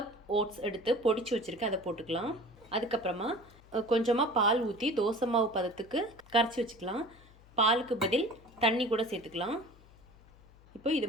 ஓட்ஸ் எடுத்து பொடிச்சு வச்சுருக்கேன், அதை போட்டுக்கலாம். அதுக்கப்புறமா கொஞ்சமாக பால் ஊற்றி தோசை மாவு பதத்துக்கு கரைச்சி வச்சுக்கலாம். பாலுக்கு பதில் தண்ணி கூட சேர்த்துக்கலாம். இப்போ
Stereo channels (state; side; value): noise; left; hum, 25 dB below the sound